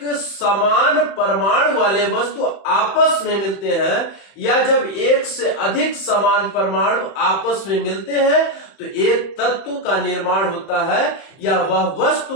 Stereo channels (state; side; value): late; right; 31 ms